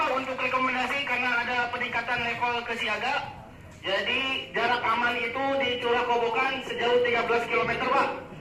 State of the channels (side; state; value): both; identical; correlation 1.00